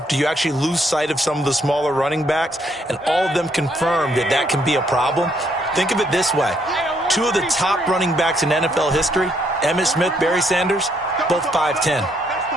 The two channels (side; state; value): both; normal; correlation 0.71